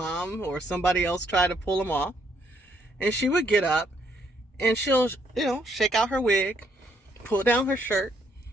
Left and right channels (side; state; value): both; normal; correlation 0.71